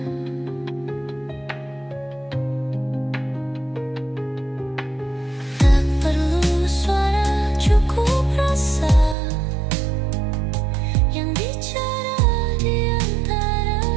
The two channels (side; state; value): left; drops out; at 9.2 s